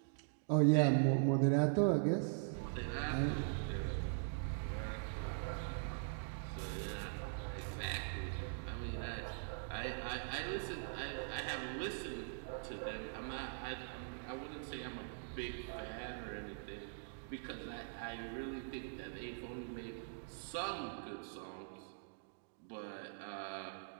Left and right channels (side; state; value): left; silent; digital silence